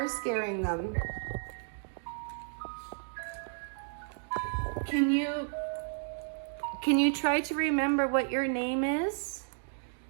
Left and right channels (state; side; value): silent; left; digital silence